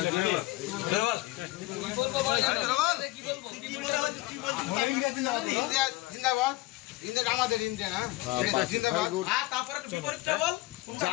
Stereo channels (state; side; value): quieter; right; 19.9 dB